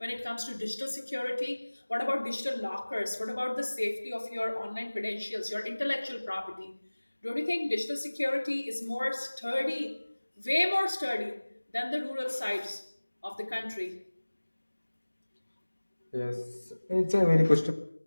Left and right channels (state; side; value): inverted; both; correlation -1.00